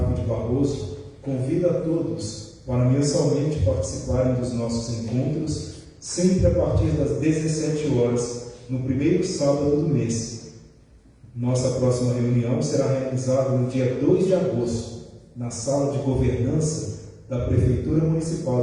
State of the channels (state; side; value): identical; both; correlation 1.00